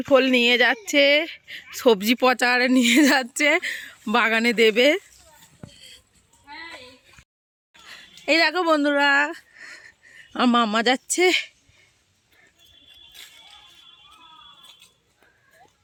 ফোল নিয়ে যাচ্ছে, সবজি পচারে নিয়ে যাচ্ছে, বাগানে দেবে। এই দেখো বন্ধুরা, আমার মামা যাচ্ছে।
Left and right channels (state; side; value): identical; both; correlation 1.00